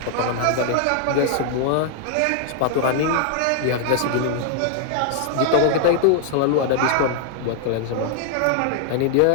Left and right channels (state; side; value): different; both; correlation 0.00